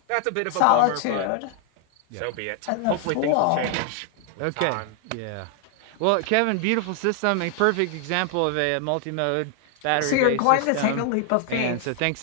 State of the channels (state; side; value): different; both; correlation 0.00